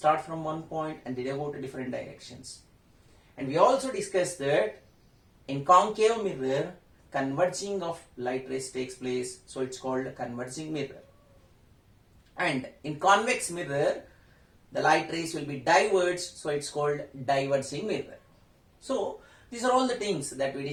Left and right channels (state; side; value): identical; both; correlation 1.00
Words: from one point and they go to different directions. And we also discussed that in concave mirror, converging of light rays takes place, so it's called a converging mirror. And in convex mirror, the light rays will be diverged, so it's called diverging mirror. So these are all the things that we